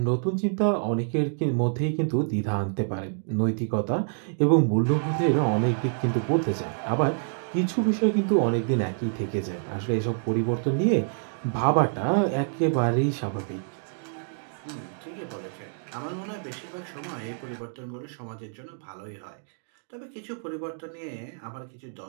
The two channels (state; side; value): silent; left; digital silence